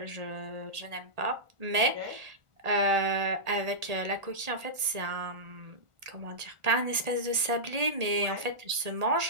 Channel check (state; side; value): late; left; 1.8 ms